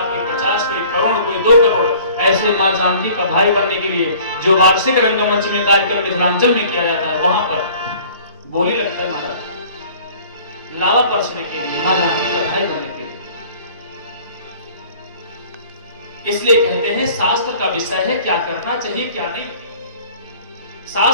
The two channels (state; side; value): inverted; both; correlation -0.50